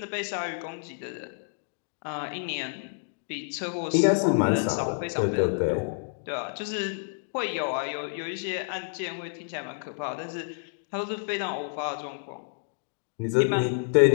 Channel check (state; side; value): silent; right; digital silence